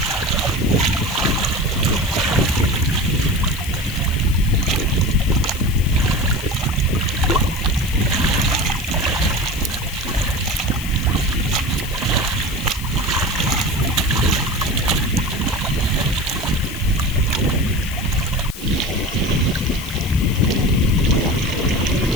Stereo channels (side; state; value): left; noise; hiss, 13 dB below the sound